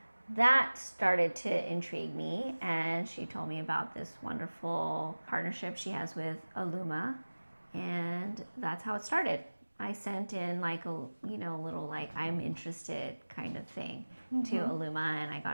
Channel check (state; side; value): inverted; both; correlation -1.00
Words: that started to intrigue me, and she told me about this wonderful partnership she has with Illuma, and that's how it started. I sent in like a little like I'm interested kind of thing to Illuma, and I